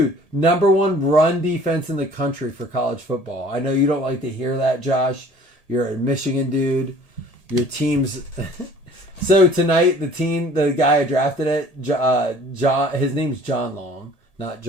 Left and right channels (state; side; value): late; right; 1.8 ms